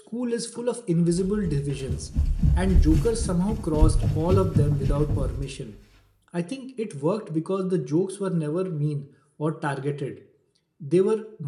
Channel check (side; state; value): both; identical; correlation 1.00